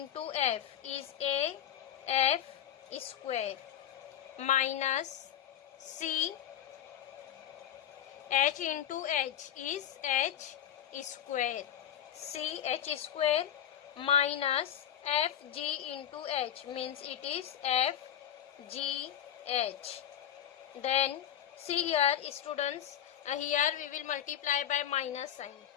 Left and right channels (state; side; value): quieter; right; 10.2 dB